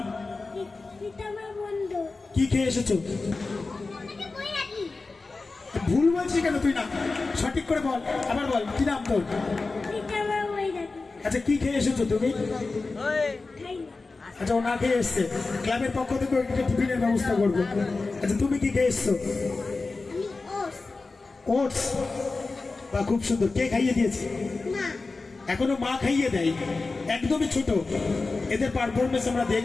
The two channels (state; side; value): quieter; right; 3.8 dB